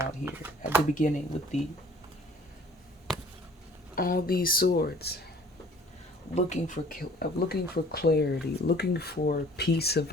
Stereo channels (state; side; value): normal; both; correlation 0.52